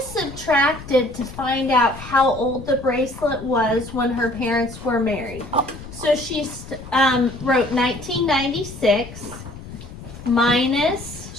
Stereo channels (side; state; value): left; noise; rumble, 14 dB below the sound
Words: subtracted to find out how old the bracelet was when her parents were married. So she wrote 1996 minus,